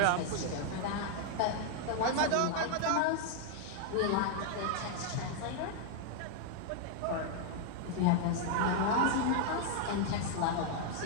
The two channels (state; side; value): different; both; correlation 0.00